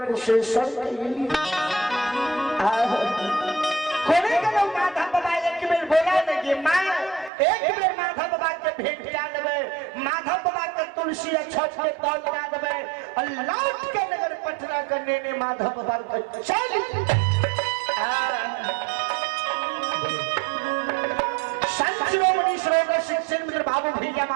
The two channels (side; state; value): left; drops out; at 7.3 s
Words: कोने के लोग माधव बाबा एक बेर बोला नहीं माँ एक बेर माधव बाबा के भेंट क्या देवे माधव बाबा के तुलसी छठ के तौल क्या देवे और लौट के नगर पटना करने ने माधव बाबा को चल संत शिरोमणि सरोवर शिक्षण मित्र बाबू भैया